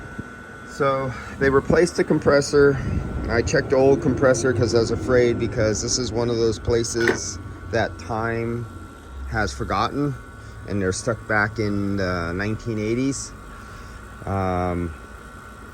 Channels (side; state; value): both; identical; correlation 1.00